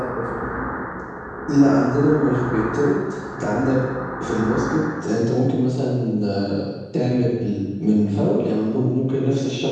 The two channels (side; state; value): both; identical; correlation 1.00